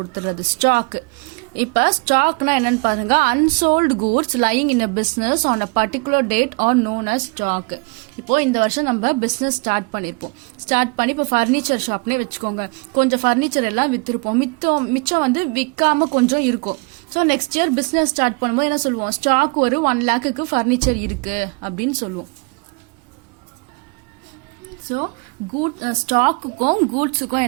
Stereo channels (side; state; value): left; quieter; 30.9 dB